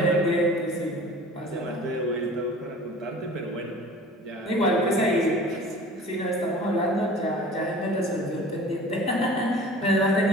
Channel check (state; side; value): normal; both; correlation 0.43